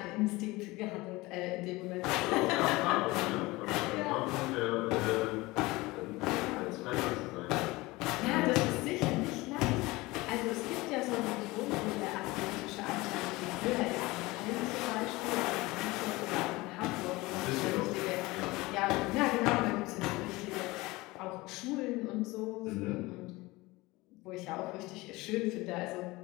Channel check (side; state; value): right; quieter; 21.3 dB